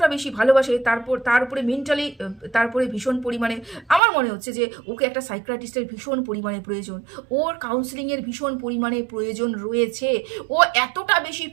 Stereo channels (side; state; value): left; drops out; at 4.0 s